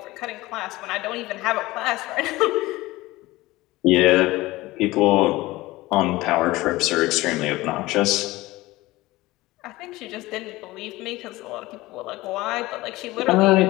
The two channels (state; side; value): quieter; right; 19.2 dB